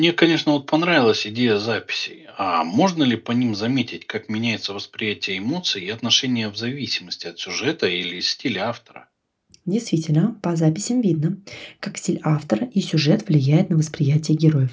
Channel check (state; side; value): identical; both; correlation 1.00